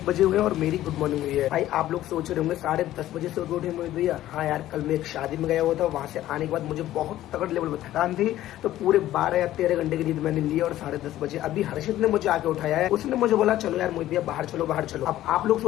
बजे हुए और मेरी गुड मॉर्निंग हुई है। भाई आप लोग सोच रहे होंगे 10:30 बजे से उठे मोहित भैया। हाँ यार, कल मैं एक शादी में गया हुआ था, वहाँ से आने के बाद मुझे बहुत तगड़ लेवल में थकान थी, तो पूरे 12 या 13 घंटे की नींद मैंने ली और 10:30 बजे अभी हर्षित ने मुझे आके उठाया है। उसने मुझे बोला चलो यार मोहित भैया बाहर चलो बाहर चलो। अब आप लोग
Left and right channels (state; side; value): quieter; right; 14.0 dB